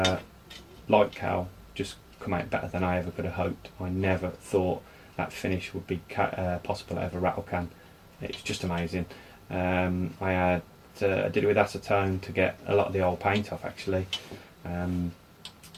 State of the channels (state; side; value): identical; both; correlation 1.00